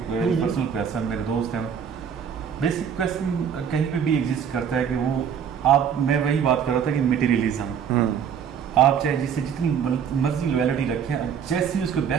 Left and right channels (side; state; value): left; quieter; 7.7 dB